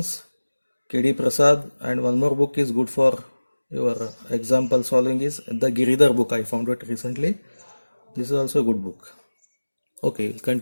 KD Prasad, and one more book is good for your example solving is the Giridhar book. I found it recently. This is also a good book. Okay, we'll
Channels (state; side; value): inverted; both; correlation -1.00